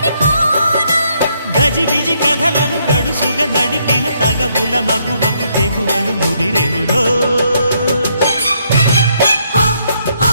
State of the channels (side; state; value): both; inverted; correlation -0.73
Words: గజిబిజి కథలను గడుసుగా నడిపిన తగవుల మగువకు తెగువను ముదిరెనురో